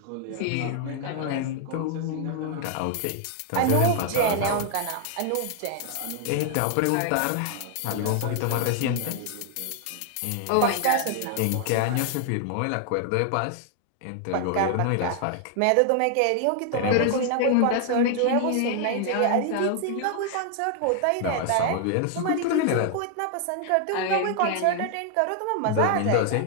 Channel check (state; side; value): different; both; correlation 0.00